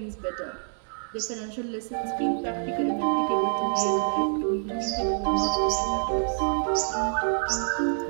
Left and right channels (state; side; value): silent; left; 60 dB below the other